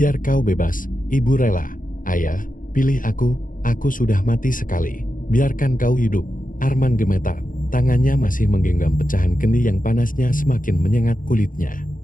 kau bebas, ibu rela. Ayah, pilih aku sudah mati sekali. Biarkan kau hidup. Arman gemetar, tangannya masih menggenggam pecahan kendi yang panasnya semakin menyengat kulitnya.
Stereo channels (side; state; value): right; late; 0.39 ms